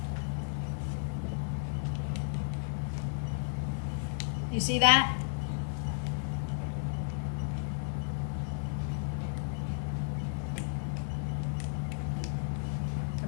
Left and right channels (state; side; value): silent; right; digital silence